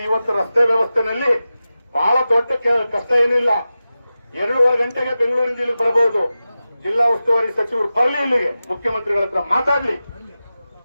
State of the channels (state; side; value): inverted; both; correlation -0.94